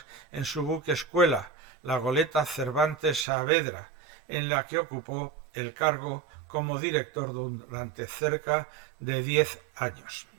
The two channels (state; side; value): drops out; left; at 3.2 s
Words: en su buque escuela, la goleta Cervantes Saavedra, en la que ocupó el cargo como director durante cerca de 10 años.